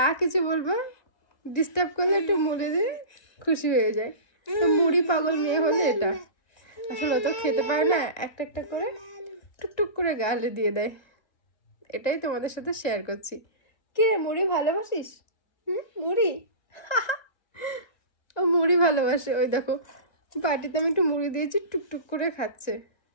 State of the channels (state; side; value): late; right; 1.7 ms